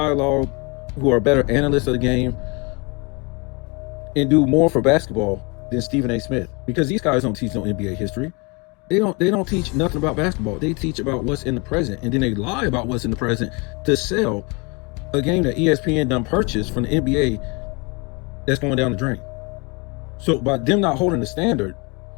who are better analysts of the game, and do more for basketball than Stephen A. Smith. Because these guys don't teach no NBA history. They don't teach nothing about basketball. They teach about what's in the present, and then they lie about what's in the present to sell a game that ESPN done purchased from the NBA that's going down the drain. So by them not holding the standard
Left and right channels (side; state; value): right; quieter; 30.0 dB